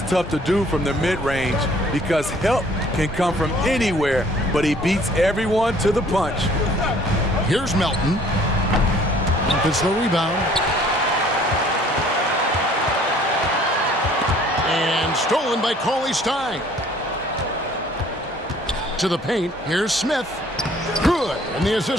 tough to do from the mid-range because help can come from anywhere, but he beats everyone to the punch. Here's Melton. Gets the rebound. And stolen by Cauley-Stein. To the paint. Here's Smith. Good. And the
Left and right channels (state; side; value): normal; both; correlation 0.56